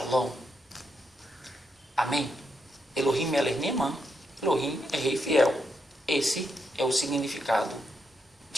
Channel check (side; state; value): both; normal; correlation 0.81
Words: Amém. Elohim Melech Neman, Elohim é Rei Fiel. Esse é o significado